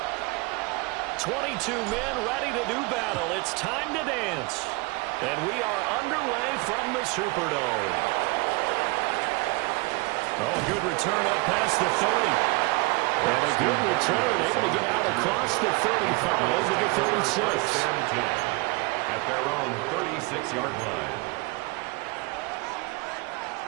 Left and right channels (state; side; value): quieter; left; 26.1 dB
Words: 22 men ready to do battle. It's time to dance. And we are underway from the Superdome. Oh, good return up past the 30. And a good return, able to get out across the 35 to the 36. At their own 36-yard line.